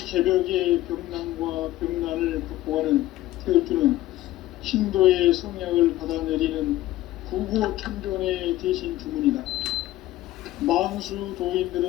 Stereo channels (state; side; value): quieter; right; 15.7 dB